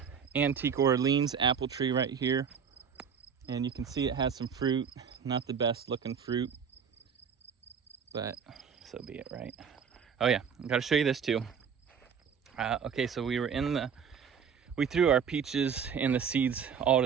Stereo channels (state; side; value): quieter; left; 6.9 dB